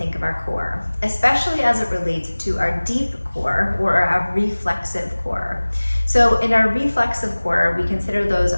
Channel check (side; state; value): both; inverted; correlation -1.00